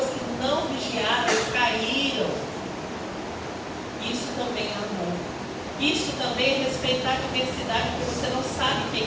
que não vigiaram, caíram. Isso também é amor. Isso também é respeitar a diversidade, porque você não sabe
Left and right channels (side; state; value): both; identical; correlation 1.00